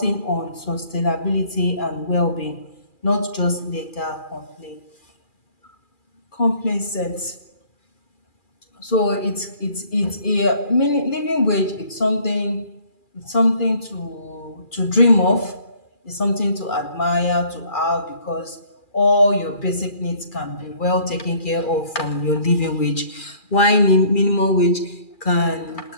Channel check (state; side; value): late; right; 2.4 ms